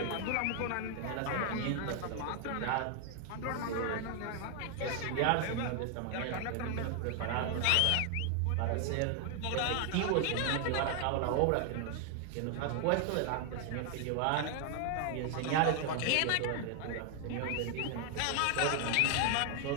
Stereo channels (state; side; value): different; both; correlation 0.00